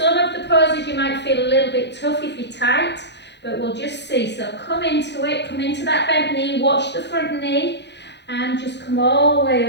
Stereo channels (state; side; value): late; right; 0.50 ms